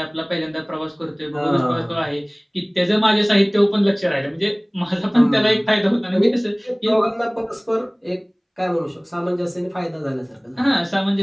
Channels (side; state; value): both; identical; correlation 1.00